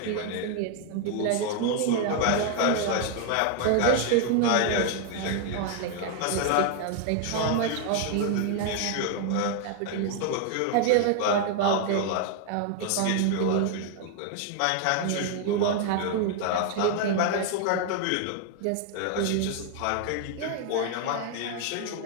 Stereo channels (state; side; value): different; both; correlation 0.00